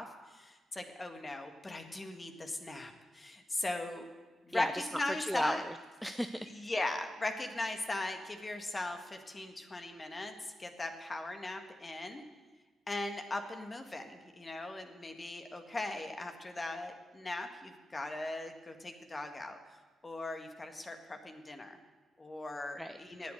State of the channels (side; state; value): both; normal; correlation 0.93